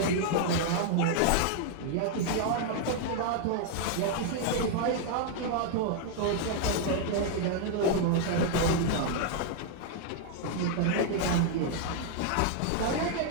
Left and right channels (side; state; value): both; different; correlation 0.00